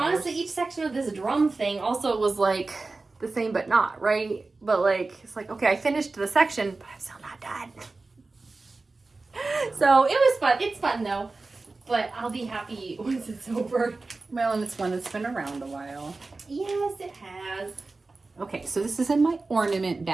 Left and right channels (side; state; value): left; quieter; 3.6 dB